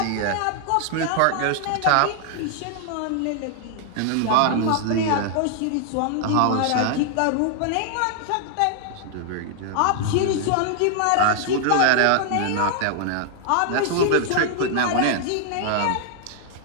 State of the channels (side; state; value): both; different; correlation 0.00